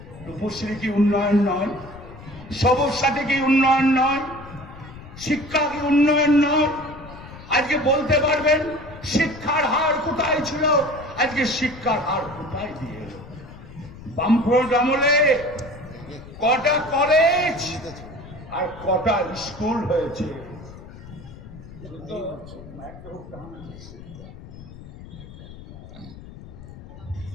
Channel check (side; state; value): left; noise; rumble, 16 dB below the sound